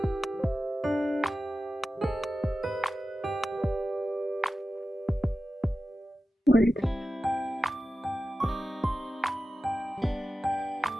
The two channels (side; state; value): both; normal; correlation 0.93